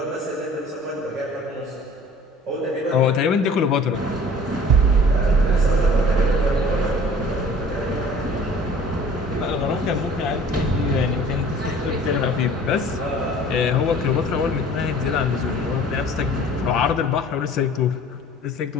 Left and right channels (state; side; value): normal; both; correlation 0.48